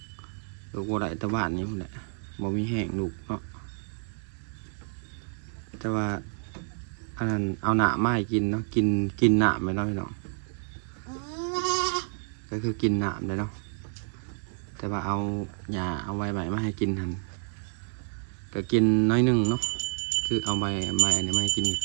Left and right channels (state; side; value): silent; left; 59 dB below the other